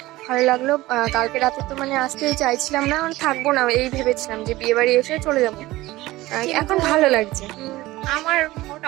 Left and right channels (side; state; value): left; quieter; 18.1 dB